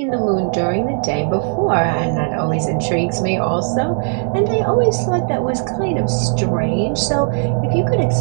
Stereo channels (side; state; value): left; silent; 67 dB below the other